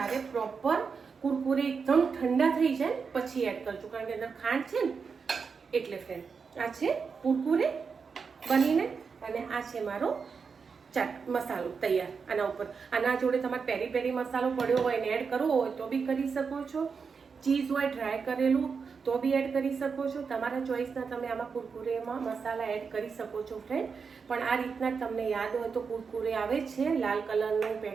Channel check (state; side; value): quieter; left; 5.5 dB